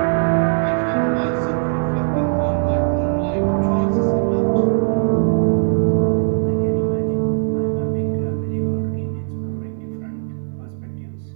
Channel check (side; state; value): left; silent; digital silence